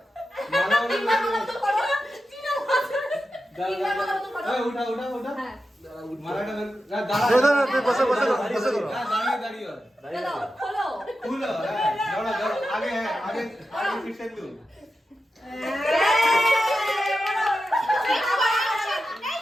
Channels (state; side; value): normal; both; correlation 0.91